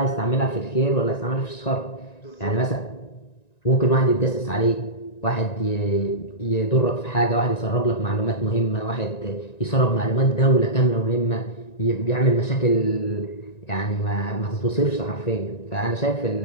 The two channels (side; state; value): right; late; 1.9 ms